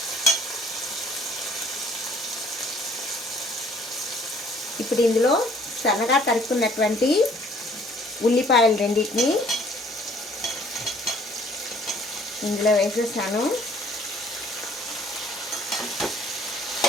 ఇప్పుడు ఇందులో సన్నగా తరుక్కున్నటువంటి ఉల్లిపాయలు రెండింటిని ఇందులో వేసేసాను.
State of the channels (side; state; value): both; normal; correlation 0.58